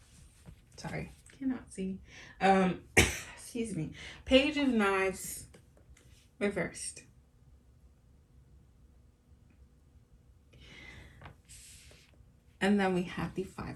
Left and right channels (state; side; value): identical; both; correlation 1.00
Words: sorry, cannot see. Excuse me. Page of Knives reversed. And then we have the Five